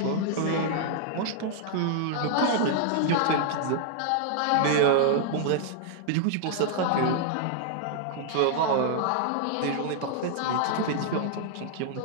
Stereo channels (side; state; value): both; different; correlation -0.01